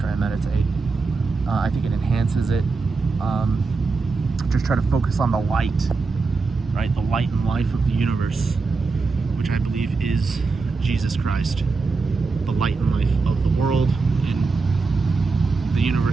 I meditate. I think it enhances it. Just try to focus on the light, right? The light and life of the universe, which I believe is Jesus Christ, the light and life of the world and the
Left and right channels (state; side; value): quieter; left; 4.2 dB